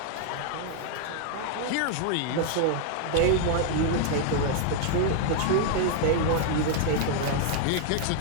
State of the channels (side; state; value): both; different; correlation 0.00